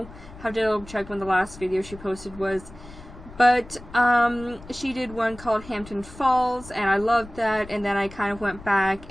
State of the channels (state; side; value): noise; left; rumble, 17 dB below the sound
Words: Have to double check when the last video she posted was. But she did one called Hampton Falls, and I loved that. And then I kind of went back